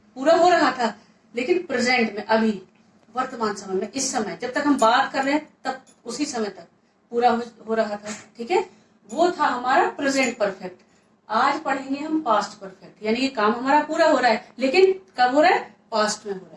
पूरा हो रहा था, लेकिन प्रेजेंट में, अभी वर्तमान समय में, इस समय जब तक हम बात कर रहे हैं तब उसी समय तक पूरा हो रहा था, ठीक है। वो था हमारा प्रेजेंट परफेक्ट। आज पढ़ेंगे हम पास्ट परफेक्ट, यानी ये काम हमारा पूरा हो रहा है, लेकिन कब हो रहा है? पास्ट में हो रहा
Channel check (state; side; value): identical; both; correlation 1.00